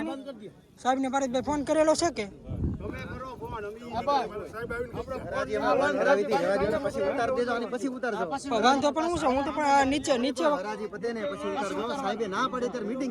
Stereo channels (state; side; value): identical; both; correlation 1.00